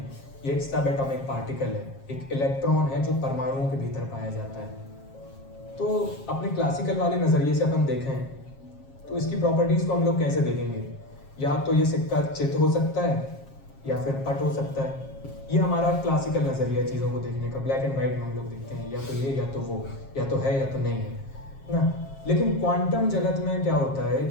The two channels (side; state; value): right; late; 7.4 ms